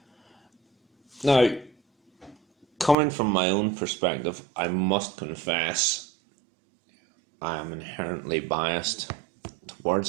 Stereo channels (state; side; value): drops out; left; at 3.0 s